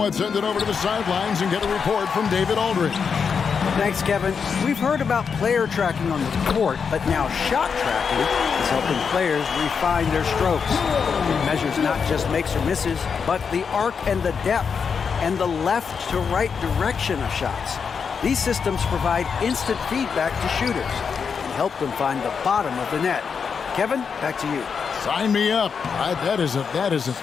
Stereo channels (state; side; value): quieter; right; 6.1 dB